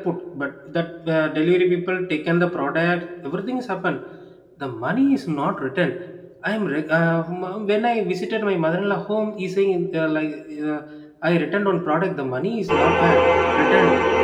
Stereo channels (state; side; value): identical; both; correlation 1.00